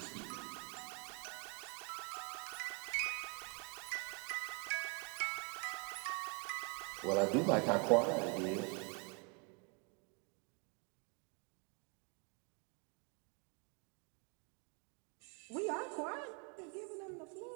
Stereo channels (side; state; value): left; quieter; 32.7 dB